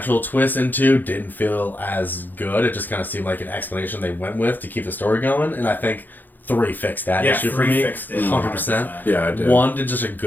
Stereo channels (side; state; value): right; late; 0.087 ms